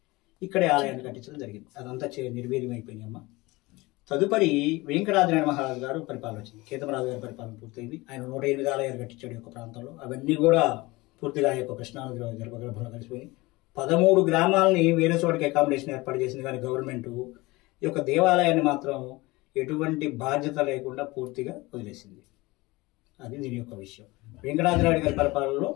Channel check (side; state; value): right; quieter; 22.0 dB